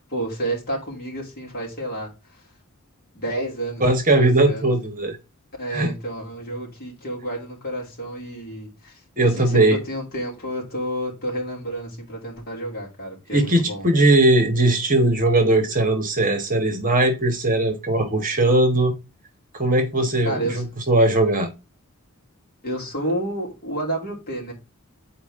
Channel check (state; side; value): normal; both; correlation 0.19